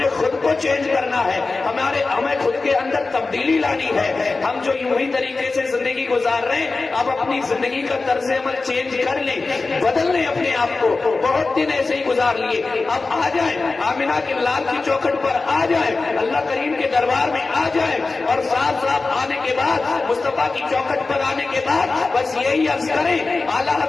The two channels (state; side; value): quieter; right; 3.8 dB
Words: خود کو چینج کرنا ہے، ہمیں خود کے اندر تبدیلی لانی ہے۔ ہم جو یوں ہی طریقے سے زندگی گزار رہے ہیں، اب اپنی زندگی کا طرز عمل چینج کر لیں، بدل لیں اپنے آپ کو۔ بہت دن ایسے ہی گزار لیے، اب آ جائیں آمنہ کے لال کی چوکھٹ پر، آ جائیں اللہ کریم کے دربار میں، آ جائیں اور صاف صاف آنے کے بعد مصطفیٰ کی چوکھٹ پر آنے کے بعد بس یہی عرض کریں، اعلیٰ